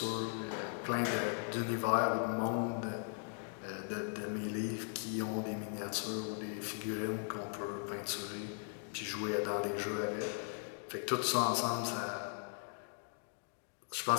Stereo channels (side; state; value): right; silent; 52 dB below the other